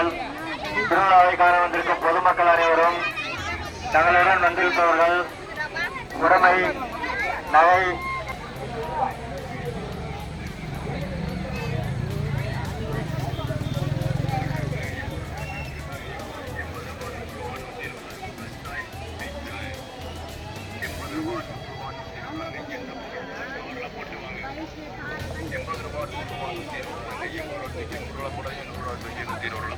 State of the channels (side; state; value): both; identical; correlation 1.00